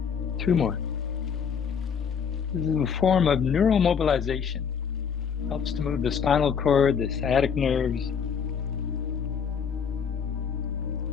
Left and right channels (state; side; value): quieter; right; 6.9 dB